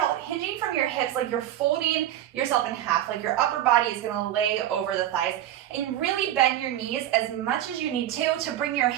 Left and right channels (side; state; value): left; quieter; 12.4 dB